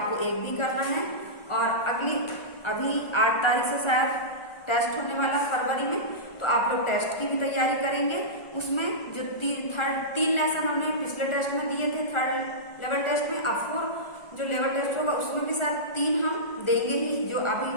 1 भी करना है। और अभी 8 तारीख से शायद टेस्ट होने वाला फरवरी में, तो आप लोग टेस्ट की भी तैयारी करेंगे। उसमें जो 3 लेसन हमने पिछले टेस्ट में दिए थे, 3rd लेवल टेस्ट में, अब 4 जो लेवल टेस्ट होगा उसमें भी शायद 3 हम देंगे ही, जो अभी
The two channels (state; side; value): late; right; 1.4 ms